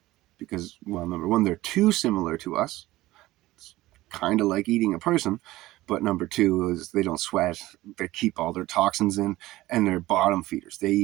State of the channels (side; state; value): left; quieter; 17.4 dB